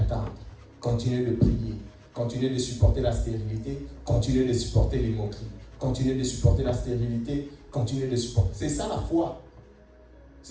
continue de prier, continue de supporter la stérilité, continue de supporter les moqueries, continue de supporter la stérilité, continue de supporter. C'est ça la foi.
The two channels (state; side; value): identical; both; correlation 1.00